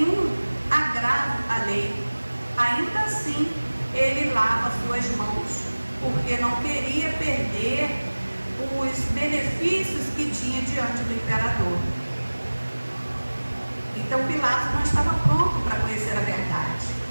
agravo à lei. Ainda assim, ele lava suas mãos, porque não queria perder os benefícios que tinha diante do imperador. Então Pilatos não estava pronto para conhecer a verdade.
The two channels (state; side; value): inverted; both; correlation -1.00